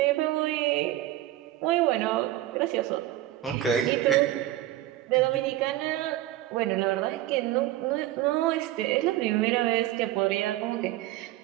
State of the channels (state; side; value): quieter; left; 14.6 dB